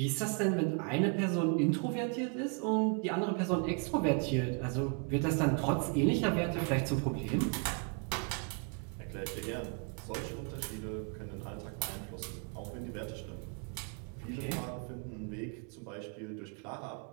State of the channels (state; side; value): quieter; left; 37.2 dB